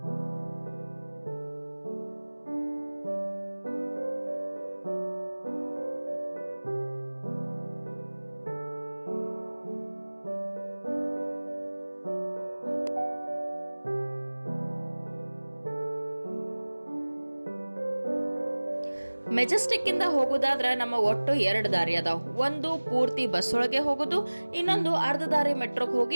ಮೆಜೆಸ್ಟಿಕ್ ಇಂದ ಹೋಗೋದಾದ್ರೆ ನಮ್ಮ ಒಟ್ಟು 2 ದಾರಿ ಅದಾವ. ಒಂದು ಪೂರ್ತಿ ಬಸ್ ಒಳಗೆ ಹೋಗೋದು, ಇನ್ನೊಂದು ಅರ್ಧ ದಾರಿ ಮೆಟ್ರೋಗೆ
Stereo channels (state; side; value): inverted; both; correlation -1.00